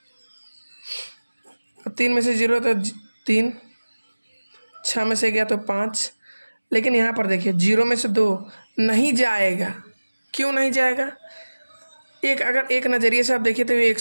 3 में से 0 तो 3, 6 में से गया तो 5। लेकिन यहाँ पर देखिए 0 में से 2 नहीं जाएगा, क्यों नहीं जाएगा, अगर एक नज़रिए से आप देखिए तो ये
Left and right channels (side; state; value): both; inverted; correlation -1.00